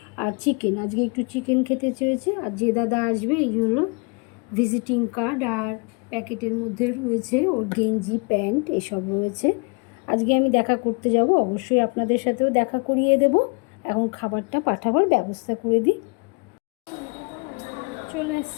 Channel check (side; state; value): right; quieter; 32.8 dB